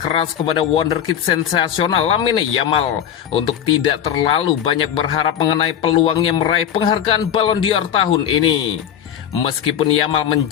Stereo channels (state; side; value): quieter; right; 9.6 dB